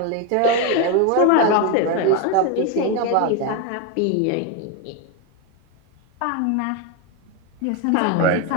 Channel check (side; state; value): both; different; correlation 0.02